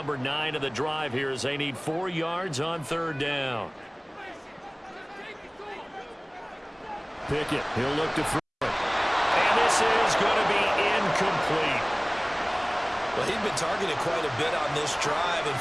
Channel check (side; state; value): both; identical; correlation 1.00